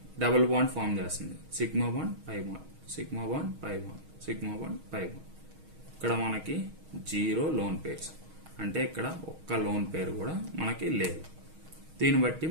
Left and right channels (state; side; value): late; left; 6.4 ms